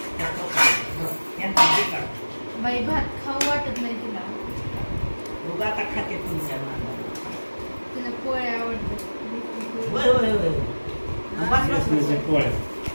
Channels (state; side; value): inverted; both; correlation -1.00